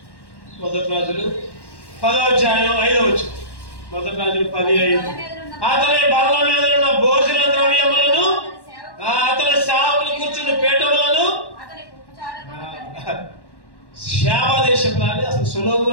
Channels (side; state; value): right; late; 1.1 ms